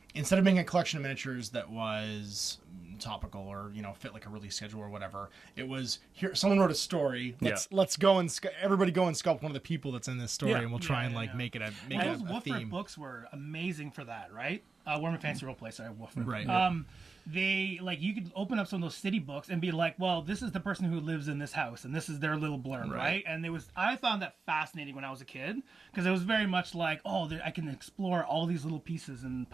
instead of being a collection of miniatures that was topical or fit like a release schedule or whatever, it was here someone wrote a story, let's go and everybody go and sculpt one of the people that's in this story, and we'll try and make it a those theme. Wooford books were amazing for that, right? Warhammer Fantasy Roleplay, sorry, Wooford. Right. They you could open up some of those city books and be like, well, this is the person who lives in this house and this is their little blurb, right? And I found that fascinating when I was a kid, because it was very much like, I can explore all these little pieces and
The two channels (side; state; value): left; quieter; 4.3 dB